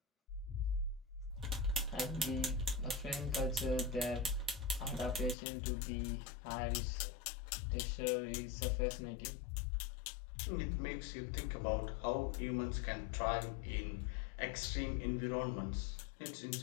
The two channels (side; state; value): right; drops out; at 5.4 s